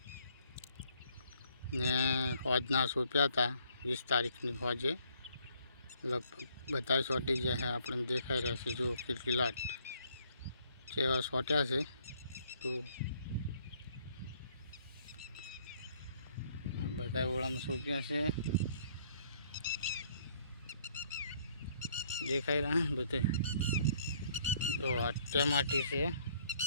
ને હોજના સોંપ્યા હતા 20 તારીખની હોજે. લગભગ બધા સોટી ગયા છે, આપણને દેખાઈ રહ્યા છે. જો કેટલી લાટ જેવા સોટ્યા છે. તો બધા ઓળામાં સોંપ્યા છે, દેખાઈ રહ્યા બધે. તો આ ટમાટી છે,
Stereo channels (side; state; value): both; inverted; correlation -0.64